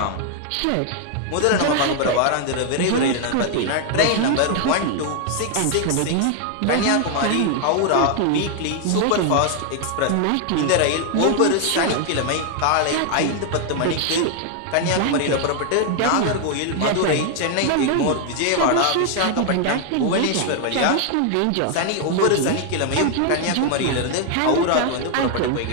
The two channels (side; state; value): both; different; correlation 0.00